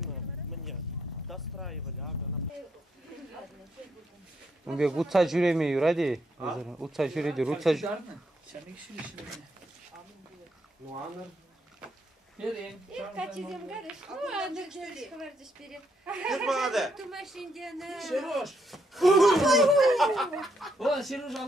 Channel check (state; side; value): normal; both; correlation 0.75